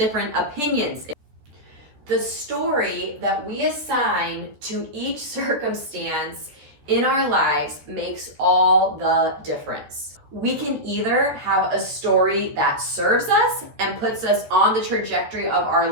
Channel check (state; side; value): late; left; 13 ms